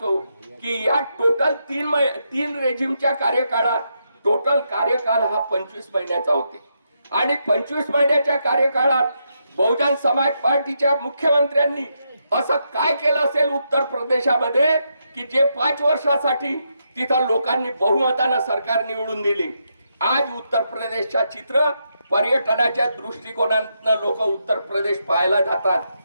की या टोटल 3 रेजिमच्या कार्यकाळात टोटल कार्यकाल हा 25 महिन्याचा होते. आणि 25 महिन्याच्या कार्यकाळात बहुजन समाज पार्टीच्या मुख्यमंत्र्यांनी असं काय केलं असेल उत्तर प्रदेशामध्ये की जे 5 वर्षासाठी तिथं लोकांनी बहुमतानं सरकार निवडून दिली. आज उत्तर प्रदेशच्या चित्र पर्यटनाच्या दृष्टिकोनातून लोक उत्तर प्रदेश पाहायला जातात.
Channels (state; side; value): inverted; both; correlation -0.81